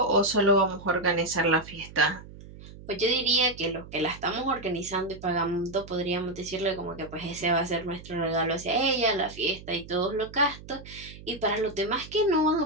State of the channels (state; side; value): noise; right; hum, 17 dB below the sound